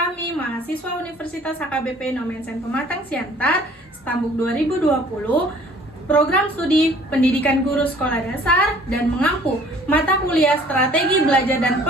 mahasiswa Universitas HKBP Nomensen Pematang Siantar, Stambuk 2020, program studi Pendidikan Guru Sekolah Dasar dan mengampu mata kuliah Strategi Belajar dan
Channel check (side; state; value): both; normal; correlation 0.54